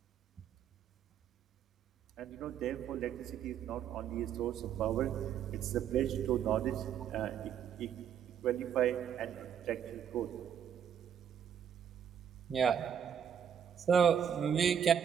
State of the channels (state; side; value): quieter; left; 8.5 dB